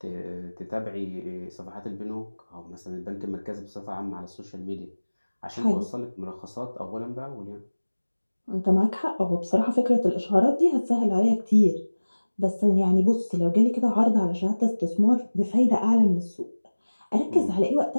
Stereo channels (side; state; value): both; inverted; correlation -1.00